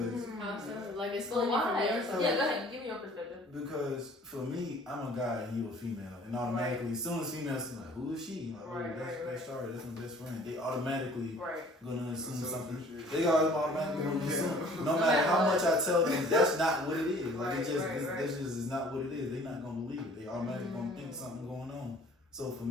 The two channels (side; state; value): both; normal; correlation 0.52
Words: How so? Like, it's Well, funny why? from their side. Yeah, go ahead, give me your perspective. Because for me, I'm a guy and you a female, and automatically, as soon as females like, who is she? Like, Right, that's Shari, that's my best friend. They automatically Right. gonna assume That's something. shit. They automatically gonna assume. No matter how much I tell them, that's not what it is. Like Right, it just, right, right. this just is not what it is. They're not gonna believe it. They automatically gonna think something going on. So for